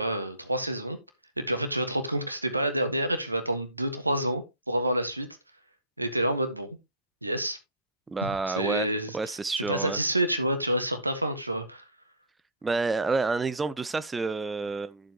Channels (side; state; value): both; inverted; correlation -0.33